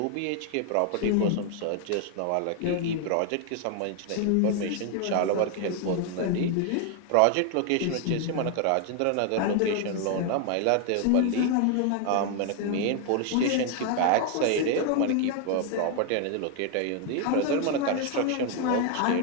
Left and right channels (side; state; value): both; different; correlation 0.00